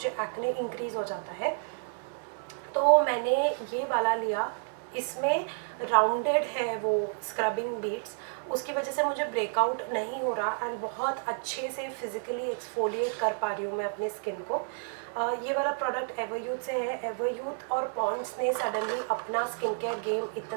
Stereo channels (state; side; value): silent; left; digital silence